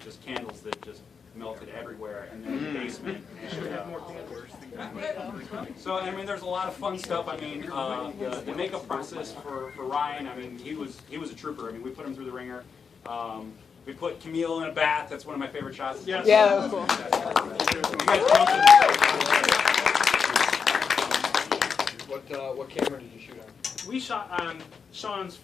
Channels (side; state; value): right; quieter; 6.0 dB